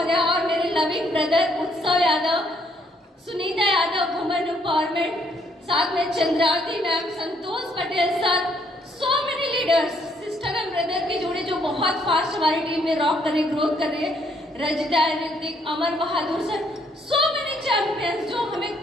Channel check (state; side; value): normal; both; correlation 0.69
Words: और मेरे लविंग ब्रदर उत्सव यादव, सुनीता यादव, वुमेन एम्पावरमेंट, साथ में Chandravati ma'am, Santosh Patel sir, so many leaders, sister and brother के जोड़े जो बहुत फास्ट हमारी टीम में रॉक कर रहे, ग्रोथ कर रहे हैं, Rajitha, Hrithik, Amar Bahadur sir, so many champions जो